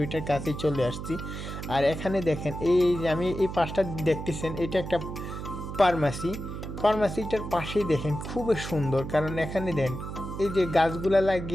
ওইটার কাছেই চলে আসছি। আর এখানে দেখেন এই আমি এই পাশটা দেখতেছেন, এটা একটা ফার্মাসিটার পাশেই দেখেন খুবই সুন্দর, কারণ এখানে দেন এই যে গাছগুলা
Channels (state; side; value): noise; right; hum, 7 dB below the sound